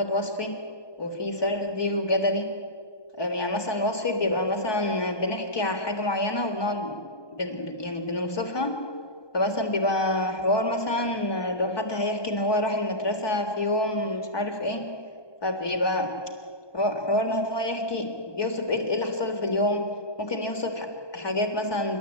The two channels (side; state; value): right; late; 1.2 ms